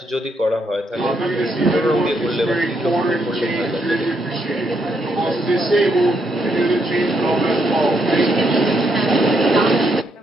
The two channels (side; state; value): both; normal; correlation 0.76